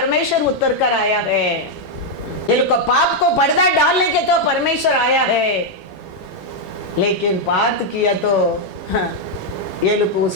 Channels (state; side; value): normal; both; correlation 0.00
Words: उत्तर कर आया है। ये लोग पाप को पर्दा डालने के तो परमेश्वर आया है, लेकिन बात किया तो ये लोग